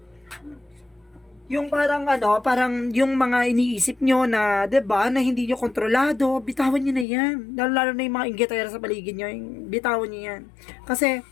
Yung parang parang yung mga iniisip nyo na, 'di ba, na hindi nyo kontrolado, bitawan nyo na yan. Lalo na yung mga inggitera sa paligid nyo, bitawan nyo yan. Kasi,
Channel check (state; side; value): drops out; right; at 7.1 s